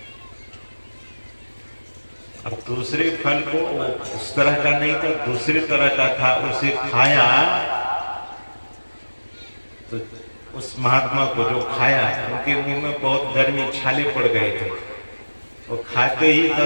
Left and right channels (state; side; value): inverted; both; correlation -1.00